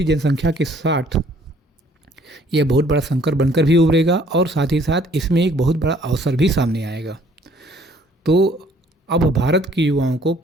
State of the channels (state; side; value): normal; both; correlation 0.59